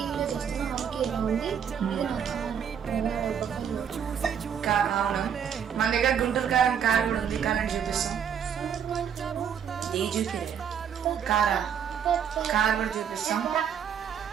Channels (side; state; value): left; quieter; 8.0 dB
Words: చేస్తున్నాం. ఓకే, ఇలా ఉంది. ఇది అవును, మన దగ్గర గుంటూరు కారం కార్ కూడా ఉంది. కార్ అని చూపిస్తాం. కార్ కూడా చూపిస్తాం.